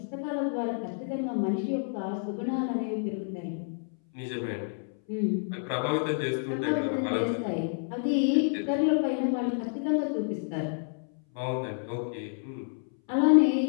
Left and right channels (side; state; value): right; silent; 58 dB below the other